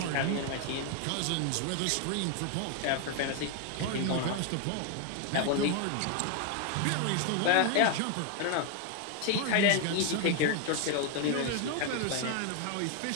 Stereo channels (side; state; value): both; different; correlation 0.01